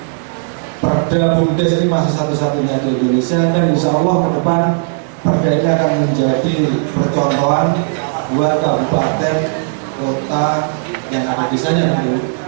Perda BUMDes ini masih satu-satunya di Indonesia, dan insya Allah ke depan perda ini akan menjadi percontohan buat kabupaten, kota yang ada desanya nanti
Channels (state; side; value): silent; left; digital silence